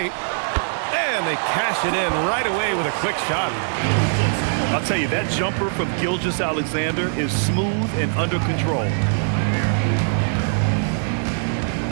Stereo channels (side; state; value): left; silent; digital silence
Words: And they cash it in right away with a quick shot. I'll tell you, that jumper from Gilgeous-Alexander is smooth and under control.